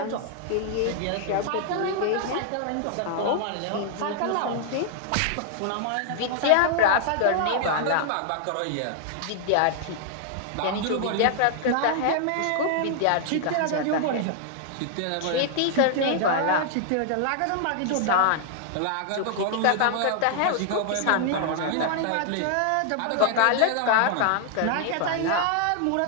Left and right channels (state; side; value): different; both; correlation 0.00